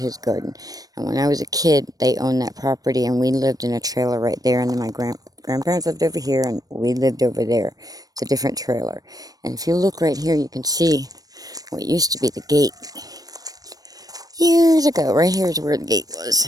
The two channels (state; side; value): late; left; 0.18 ms